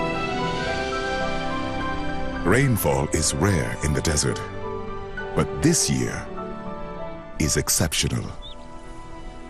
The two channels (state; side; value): identical; both; correlation 1.00